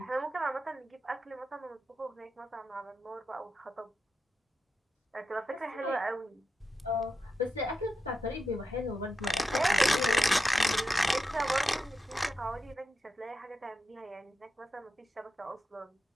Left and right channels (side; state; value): both; normal; correlation 0.89